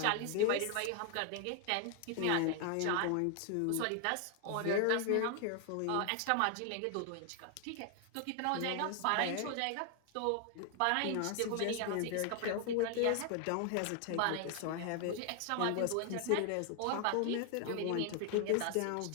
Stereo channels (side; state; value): both; different; correlation 0.00